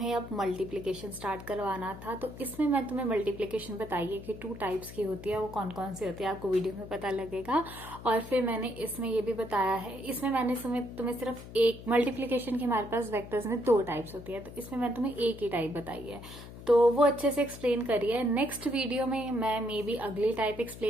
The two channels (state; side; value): noise; left; hum, 14 dB below the sound